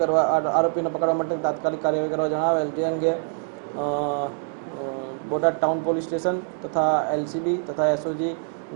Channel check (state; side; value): silent; left; 62 dB below the other